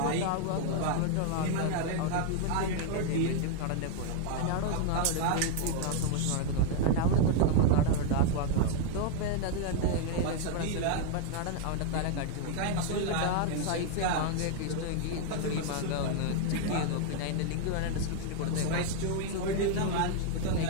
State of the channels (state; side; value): different; both; correlation 0.00